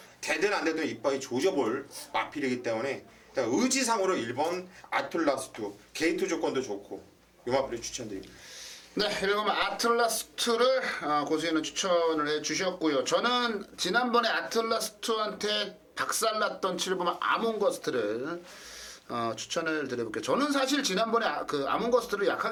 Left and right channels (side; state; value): both; identical; correlation 1.00